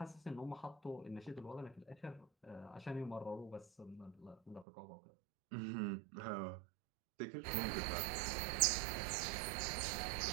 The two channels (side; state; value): left; drops out; at 4.7 s